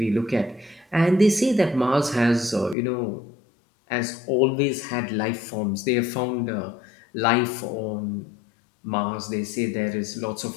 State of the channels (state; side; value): drops out; right; at 2.8 s